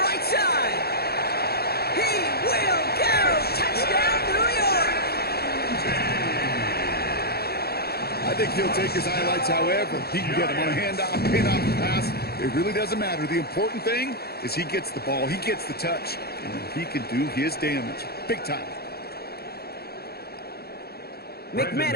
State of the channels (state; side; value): late; right; 0.46 ms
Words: right side. He will go! Touchdown, New York! I think he'll take his highlights however. He can get him on a handoff, pin off the pass. It really doesn't matter. The important thing is he gets the ball, he gets the touch, and he can do his damage. Big time.